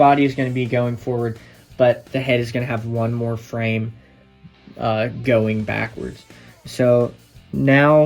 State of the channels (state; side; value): identical; both; correlation 1.00